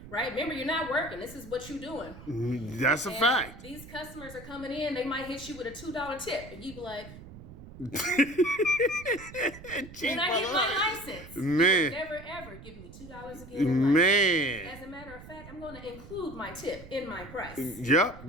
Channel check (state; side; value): noise; right; rumble, 16 dB below the sound